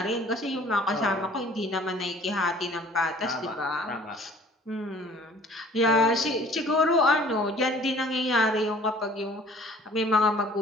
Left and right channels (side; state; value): both; normal; correlation 0.52